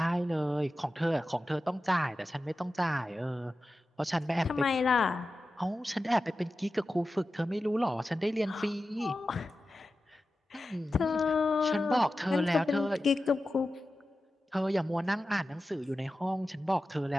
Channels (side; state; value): both; normal; correlation 0.93